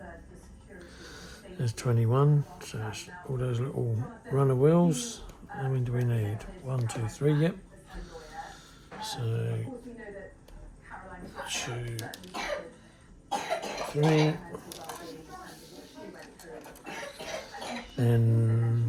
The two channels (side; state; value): both; identical; correlation 1.00